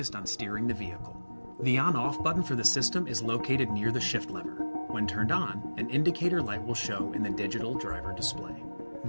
on steering the vehicle. The on-off button for the system is located near the shift lever. When turned on, an indicator light will show in the digital driver display.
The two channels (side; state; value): both; inverted; correlation -1.00